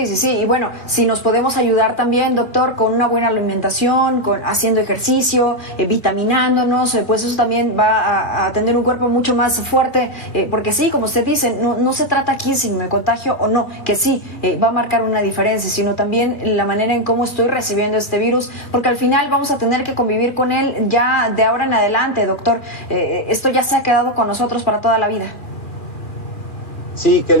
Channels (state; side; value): late; right; 2.3 ms